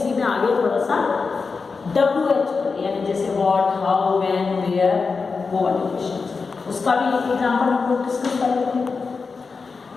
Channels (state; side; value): quieter; right; 4.7 dB